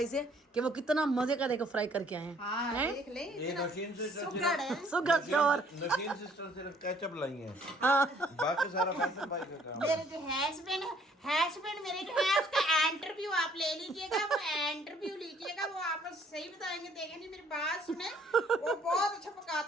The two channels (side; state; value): both; normal; correlation 0.61